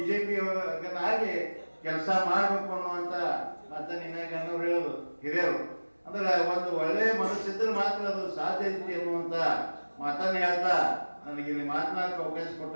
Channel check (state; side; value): inverted; both; correlation -1.00